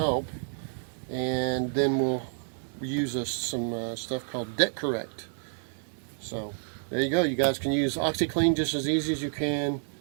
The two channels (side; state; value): left; silent; digital silence